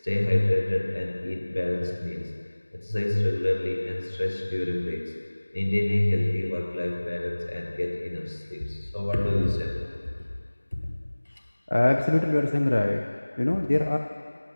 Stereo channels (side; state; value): both; inverted; correlation -1.00